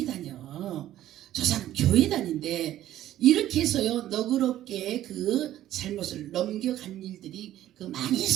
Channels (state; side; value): quieter; left; 13.1 dB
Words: 다녀. 저 사람 교회 다닌데 이렇게 해서요, 너그럽게 그 잘못을 넘겨간 일들이 많이